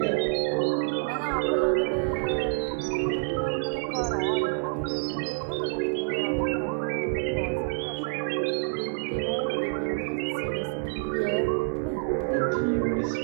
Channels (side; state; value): left; silent; 57 dB below the other